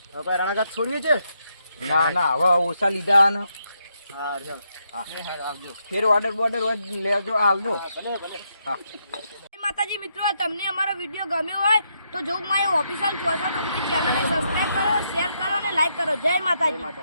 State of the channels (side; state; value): both; inverted; correlation -0.79